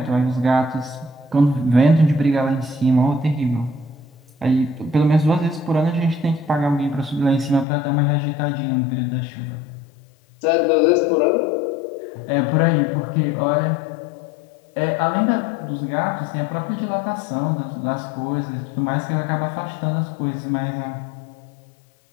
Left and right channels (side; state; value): right; drops out; at 7.7 s